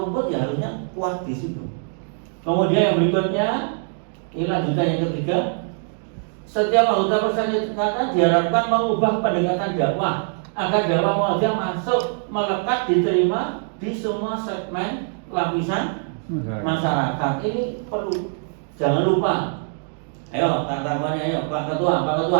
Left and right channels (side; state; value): left; silent; 59 dB below the other